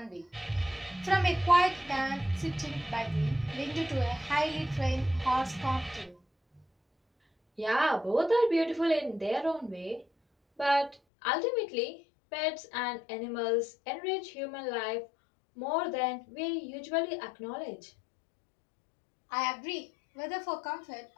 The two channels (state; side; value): drops out; right; at 11.0 s